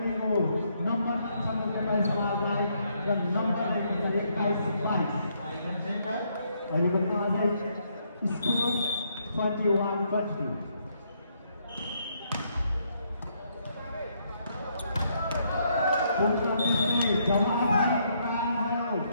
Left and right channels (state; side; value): inverted; both; correlation -0.73